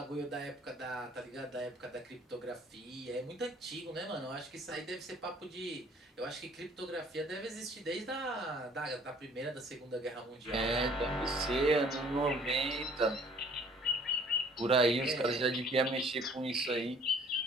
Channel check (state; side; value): normal; both; correlation 0.55